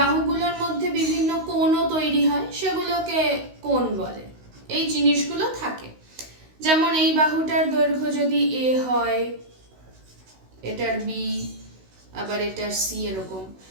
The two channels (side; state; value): left; late; 16 ms